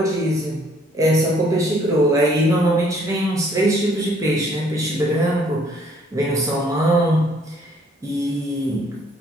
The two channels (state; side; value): normal; both; correlation 0.62